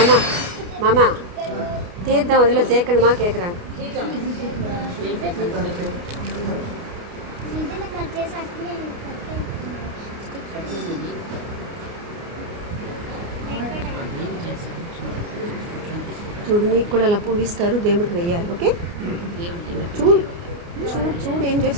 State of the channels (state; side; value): late; left; 29 ms